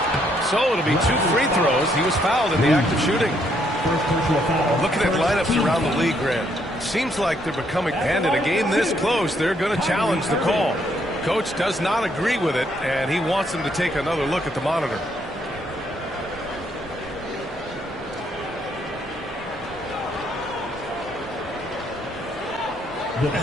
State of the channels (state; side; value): normal; both; correlation 0.71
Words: So it'll be 2 free throws. He was fouled in the act of shooting. Looking at lineups around the league, Grant, seems like they're becoming, and in a game this close, they're going to challenge the call. Coach does not agree with it, and he wants them to take another look at the monitor.